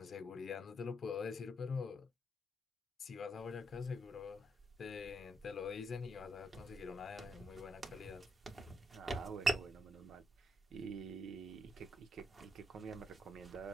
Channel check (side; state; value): both; normal; correlation 0.77